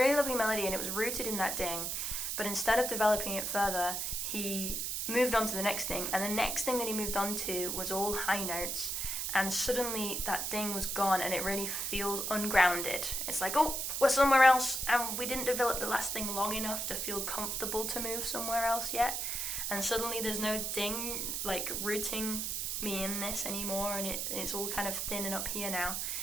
lovely melody, and it was rooted in that ding, but instead of developing it further, he moved on to the next thing, and the next thing that he moved on to was all high notes, and suddenly that ding was gone, and it really feels ungrounded. It's like, oh, we're somewhere else, and we didn't develop the last thing long enough to feel comfortable to move somewhere else yet, and suddenly there's no ding like rooting me in this anymore, and it's all kind of thin and up here now.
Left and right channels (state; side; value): noise; right; hiss, 1 dB below the sound